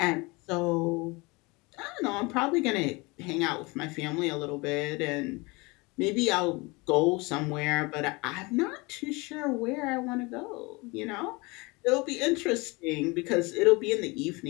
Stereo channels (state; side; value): quieter; right; 25.7 dB